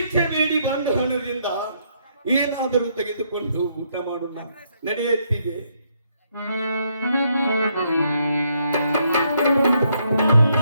ಬೇಡಿ ಬಂದ ಹಣದಿಂದ ಏನಾದರೂ ತೆಗೆದುಕೊಂಡು ಊಟ ಮಾಡೋಣ ನಡೆಯುತ್ತಿದೆ.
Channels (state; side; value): inverted; both; correlation -0.73